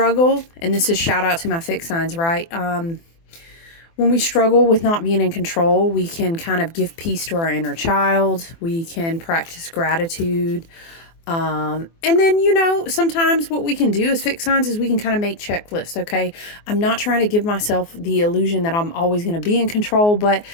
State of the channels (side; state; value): right; late; 24 ms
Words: and this is shout out to my fixed signs, right? When we struggle with not being in control, we can kind of give peace to our inner child. We can practice gratitude. And then, sometimes what we can do as fixed signs is we can kind of make checklists. Okay. I'm not trying to give myself the illusion that I'm always going to be in control, but